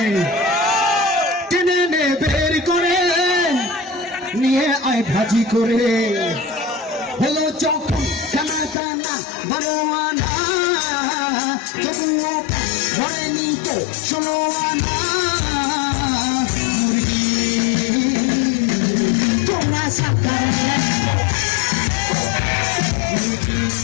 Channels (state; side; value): drops out; right; at 8.8 s